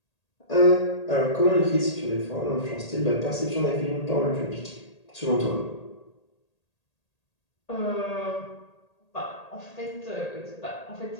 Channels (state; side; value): late; right; 1.8 ms